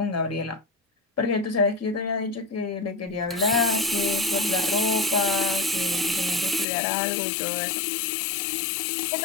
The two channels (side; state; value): right; drops out; at 6.7 s